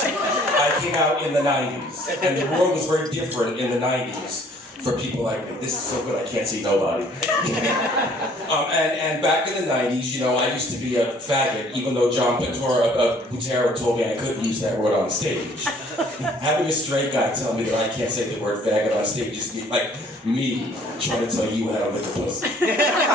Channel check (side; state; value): both; normal; correlation 0.57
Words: I came out in the 90s, and the world was very different in the 90s for people like me. This is so good, I can't see nobody. And back in the 90s, you know, I used to be a faggot, even though John Butera told me I couldn't use that word on stage. Having a straight guy tell me that I can't say the word faggot on stage is like me trying to tell you how to lick a pussy.